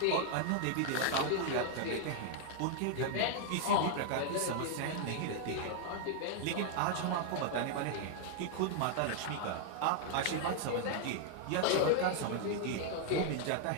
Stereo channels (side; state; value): both; different; correlation 0.00